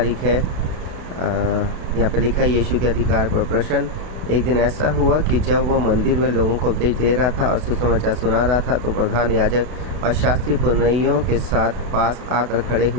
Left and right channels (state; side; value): late; left; 32 ms